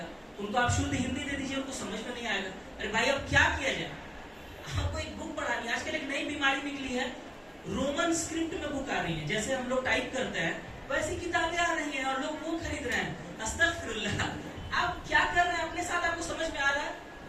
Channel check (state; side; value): identical; both; correlation 1.00